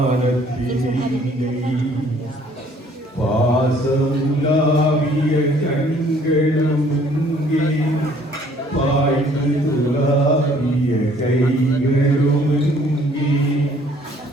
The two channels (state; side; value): normal; both; correlation 0.59